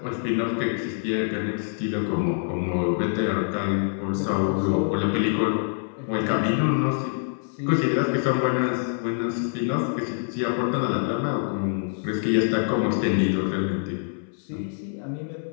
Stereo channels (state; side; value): silent; right; 61 dB below the other